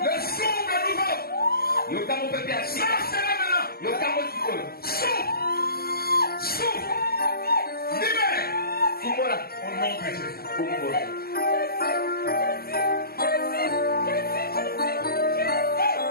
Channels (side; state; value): right; late; 0.44 ms